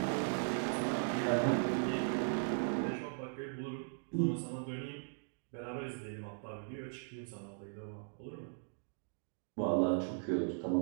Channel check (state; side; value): silent; left; digital silence